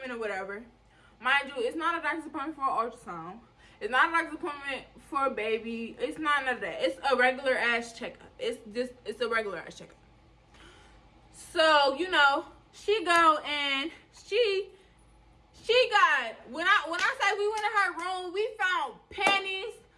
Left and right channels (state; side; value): identical; both; correlation 1.00